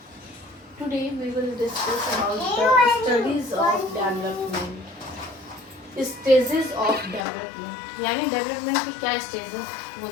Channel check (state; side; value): drops out; right; at 7.2 s